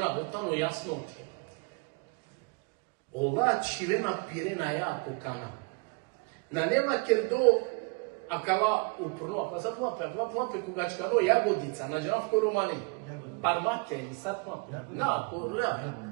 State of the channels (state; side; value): quieter; left; 32.0 dB